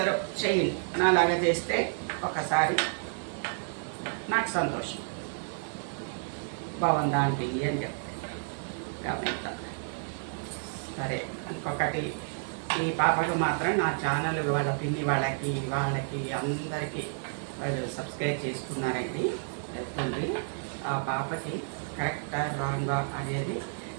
చెయ్యండి. నాలాగా చేస్తే ఒకసారి నాకు సంతోషం. బాగుందా ఆంటీ అని చెప్తాను కామెంట్. సరే, ఇంకొకటి, ఈ పాపకు మాత్రం నా ఛానల్ వాళ్ళ పిన్ని వాళ్ళకి అందరికీ వాళ్ళు సబ్స్క్రైబ్ చేసుకున్నారండి. వెళ్తుంది. ఆ పాపకి కరెక్టా రాంగా అనేది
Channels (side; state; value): left; silent; digital silence